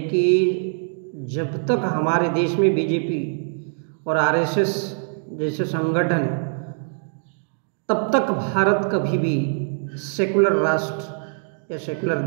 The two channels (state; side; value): silent; left; 61 dB below the other